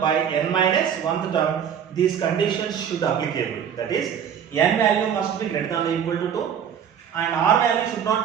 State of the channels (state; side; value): quieter; left; 8.3 dB